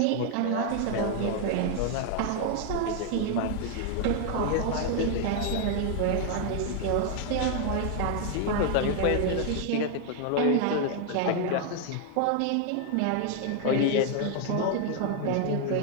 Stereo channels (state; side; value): different; both; correlation 0.00